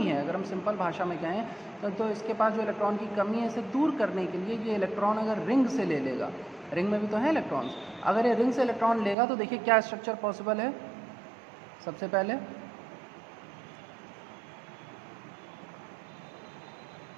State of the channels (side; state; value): left; drops out; at 9.2 s